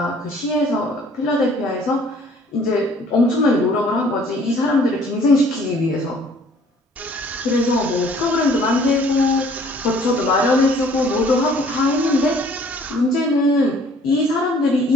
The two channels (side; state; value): both; normal; correlation 0.56